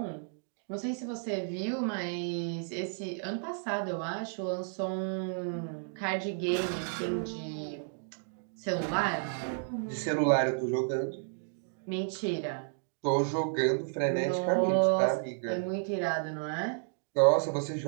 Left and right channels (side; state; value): left; silent; digital silence